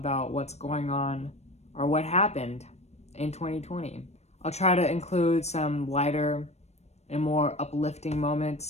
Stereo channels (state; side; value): late; right; 0.31 ms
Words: what's going on or what happened in 2020. I'll try to include some lighter and more uplifting